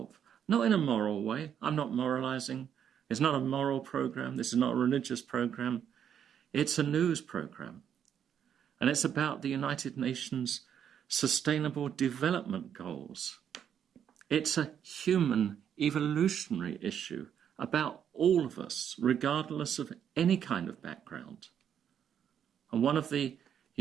Not in a moral way. I'm not moralizing. It's not a moral program. This is not a religious program. It's a news program. And it's about the United Nations Sustainable Development Goals. It's a human evolutionary issue about all of us, regardless of any kind of background. And one of the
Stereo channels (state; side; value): quieter; left; 8.8 dB